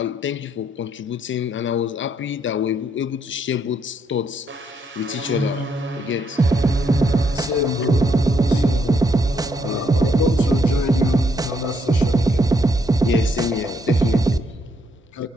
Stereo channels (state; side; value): normal; both; correlation 0.74